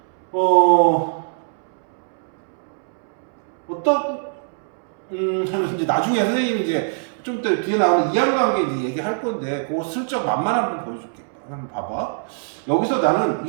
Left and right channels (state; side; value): silent; left; 64 dB below the other